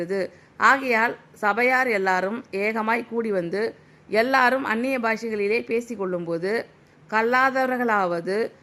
ஆகையால் சபையார் எல்லாரும் ஏகமாய் கூடி வந்து எல்லாரும் அந்நிய பாஷைகளிலே பேசிக்கொள்ளும்போது கல்லாதவர்களாவது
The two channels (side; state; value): both; identical; correlation 1.00